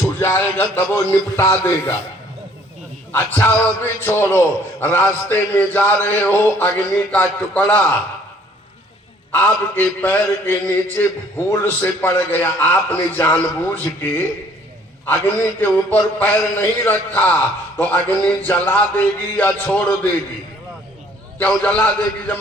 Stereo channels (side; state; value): both; normal; correlation 0.59